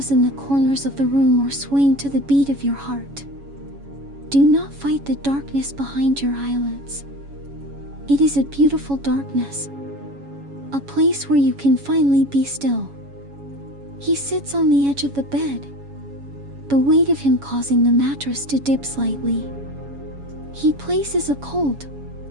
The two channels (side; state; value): left; late; 7.2 ms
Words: in the corners of the room are swaying to the beat of your heart. Do not fight the darkness behind your eyelids. It is a beautiful darkness, a place where you can finally be still. He sits on the edge of the bed, the weight of him causing the mattress to dip slightly. He places a cold,